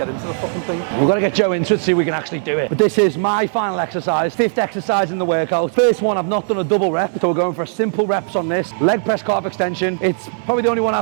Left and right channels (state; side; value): silent; left; 63 dB below the other